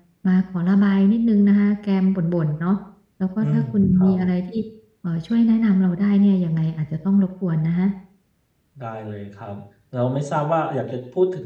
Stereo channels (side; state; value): both; identical; correlation 1.00